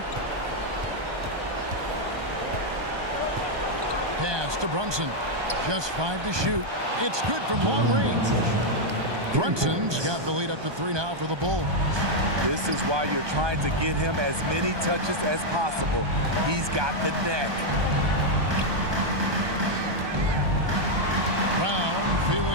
Pass to Brunson. Just 5 to shoot. It's good from long range. Brunson's got the lead up to 3 now for the Bulls. This is why you're trying to get him as many touches as possible. He's got the neck. Brown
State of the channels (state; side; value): late; left; 1.2 ms